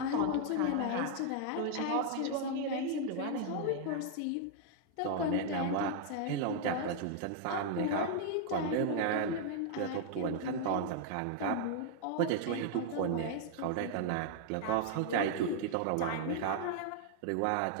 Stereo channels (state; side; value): different; both; correlation 0.00